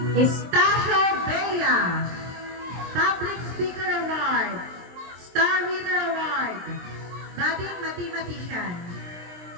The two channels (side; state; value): left; late; 23 ms